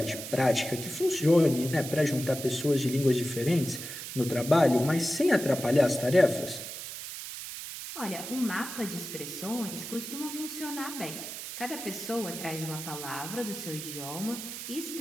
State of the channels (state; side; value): noise; right; hiss, 8 dB below the sound